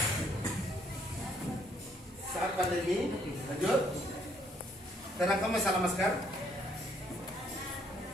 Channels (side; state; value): both; normal; correlation 0.68